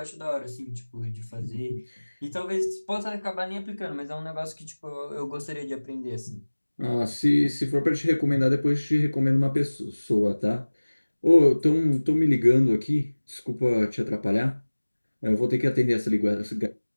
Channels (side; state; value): both; inverted; correlation -1.00